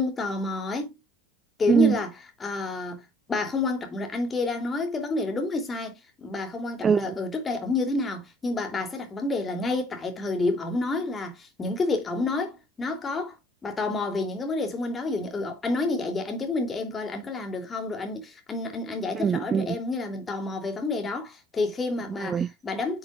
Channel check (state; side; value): normal; both; correlation 0.62